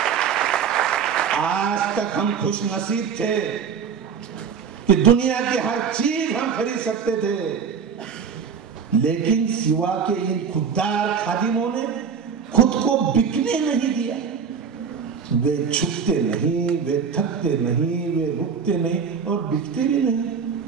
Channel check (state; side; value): quieter; left; 6.6 dB